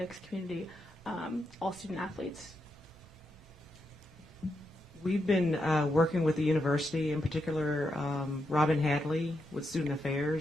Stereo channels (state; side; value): normal; both; correlation 0.83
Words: community, all student athletes. We've been working with the university, in particular Robin Hadley with Student